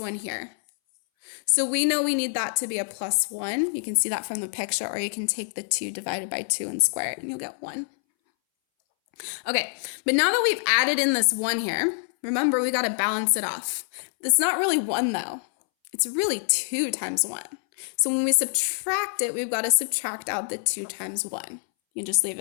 here. So we know we need that to be a +1. You can see that from the picture, or you can take the 2 divided by 2 and square it, and you'll get 1. Okay, but now that we've added in this 1 here, remember we got to balance it off. It's not really 1 though. It's really 2 times 1. So when we subtract it, we've got to subtract out the 2 times 1. You can just leave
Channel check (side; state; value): right; silent; 61 dB below the other